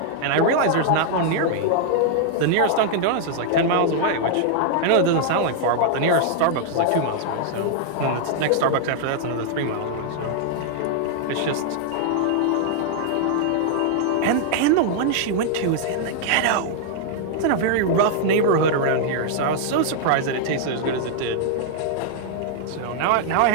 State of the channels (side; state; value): both; different; correlation -0.01